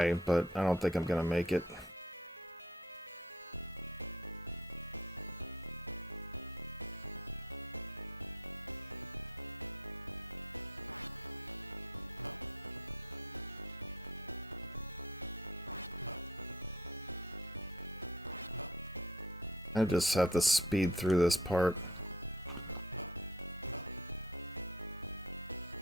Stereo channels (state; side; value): normal; both; correlation 0.56